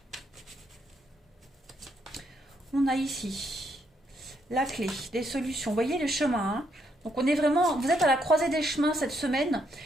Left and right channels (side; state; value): both; normal; correlation 0.75